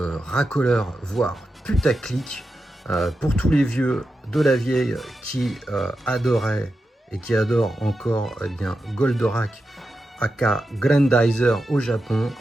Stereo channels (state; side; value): normal; both; correlation 0.89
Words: racoleur, voire putaclic, pour tous les vieux de la vieille qui adoraient et qui adorent encore bien Goldorak aka Grandizer au Japon.